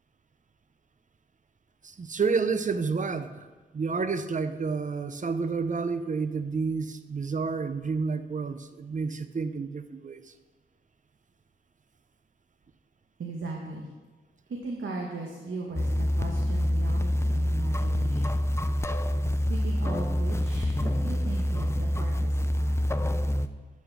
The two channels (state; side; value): normal; both; correlation 0.85